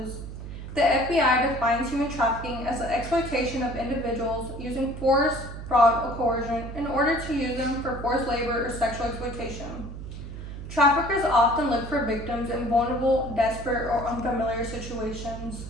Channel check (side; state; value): right; noise; hum, 10 dB below the sound